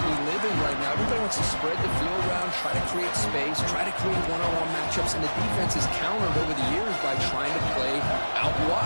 we live in right now, everybody wants to spread the field around, try to create space, try to create one-on-one matchups, and the defense is countered over the years by trying to play out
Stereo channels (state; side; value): inverted; both; correlation -1.00